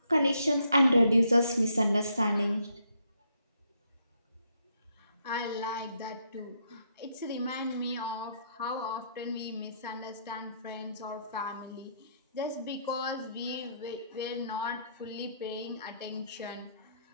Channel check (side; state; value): both; inverted; correlation -0.74